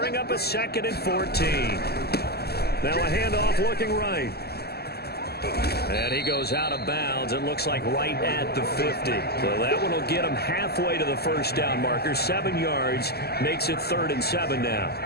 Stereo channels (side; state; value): right; late; 0.46 ms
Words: up a 2nd and 14. Now a handoff looking right. And he goes out of bounds. It looks like right at the 50. So that one will get him halfway to the first down marker. 7 yards makes it 3rd and 7 now.